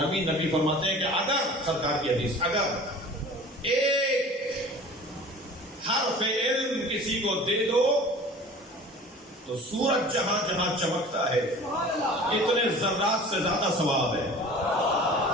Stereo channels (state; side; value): normal; both; correlation 0.42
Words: نبی فرماتے ہیں کہ اگر, سرکار کی حدیث, اگر ایک حرف علم کسی کو دے دو تو سورج جہاں جہاں چمکتا ہے اتنے ذرات سے زیادہ ثواب ہے.